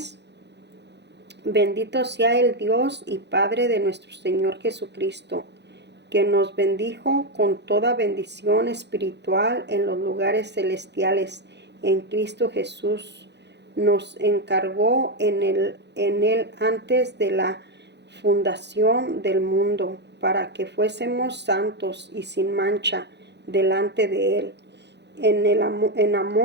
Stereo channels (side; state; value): left; late; 0.50 ms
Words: Bendito sea el Dios y Padre de nuestro Señor Jesucristo, que nos bendijo con toda bendición espiritual en los lugares celestiales en Cristo Jesús. Nos encargó en él antes de la fundación del mundo, para que fuésemos santos y sin mancha delante de Él. En